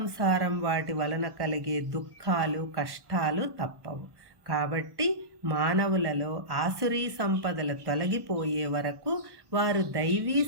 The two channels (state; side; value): late; left; 1.1 ms